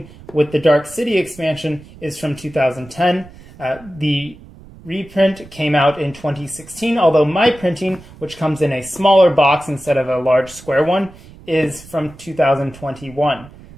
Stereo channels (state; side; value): noise; right; rumble, 20 dB below the sound